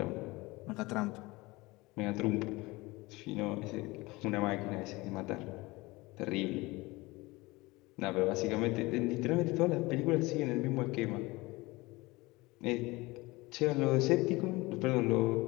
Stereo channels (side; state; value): right; quieter; 22.1 dB